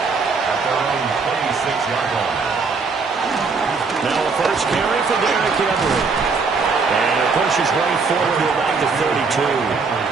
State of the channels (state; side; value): quieter; left; 4.7 dB